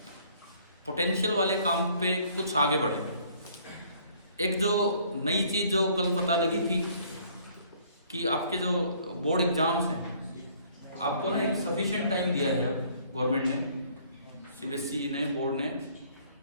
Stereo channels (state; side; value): inverted; both; correlation -0.60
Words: पोटेंशियल वाले काम पे कुछ आगे बढ़े। एक जो नई चीज जो कल पता लगी थी कि आपके जो बोर्ड एग्जाम्स हैं, आपको ना एक सफिशिएंट टाइम दिया है गवर्नमेंट ने, सीबीएसई ने, बोर्ड ने।